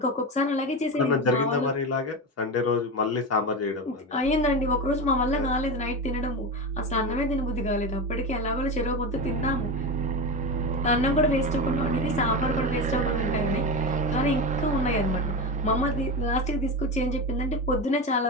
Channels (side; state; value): both; normal; correlation 0.20